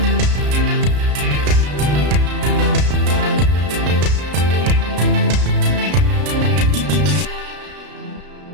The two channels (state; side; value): late; left; 33 ms